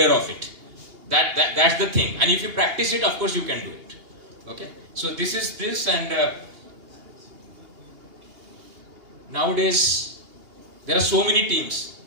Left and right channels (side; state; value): left; late; 2.8 ms